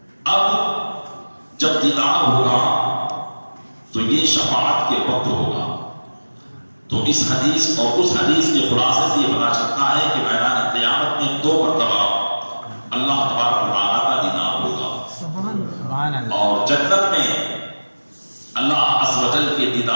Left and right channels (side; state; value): both; inverted; correlation -1.00